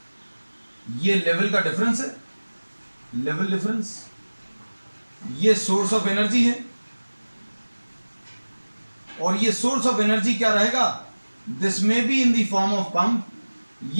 ये लेवल का डिफरेंस है, लेवल डिफरेंस। ये सोर्स ऑफ एनर्जी है, और ये सोर्स ऑफ एनर्जी क्या रहेगा? दिस में be in the form of pump.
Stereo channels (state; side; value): inverted; both; correlation -1.00